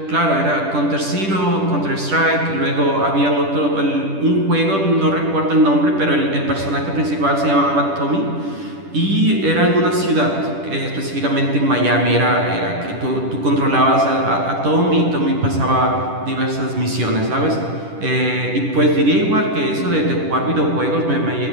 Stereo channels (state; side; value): late; left; 10 ms